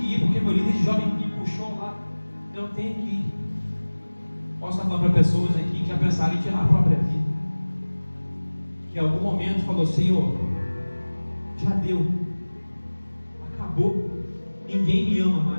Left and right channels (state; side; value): inverted; both; correlation -1.00